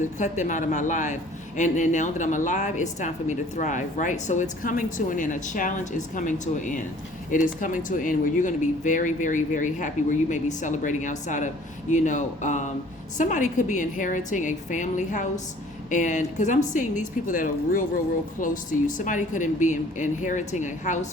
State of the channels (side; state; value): both; normal; correlation 0.53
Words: cut them out of my life. And now that I'm alive, it's time for me to thrive, right? So it's coming to an end. A challenge is coming to an end. It is coming to an end where you're going to be very, very, very happy, where you may be celebrating outside of, somebody could be inheriting a family house. And because I'm seeing these people that are real close to you. Somebody could be inheriting a